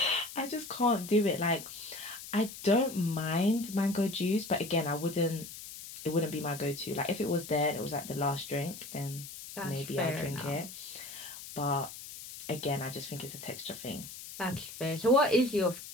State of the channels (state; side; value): noise; left; hiss, 12 dB below the sound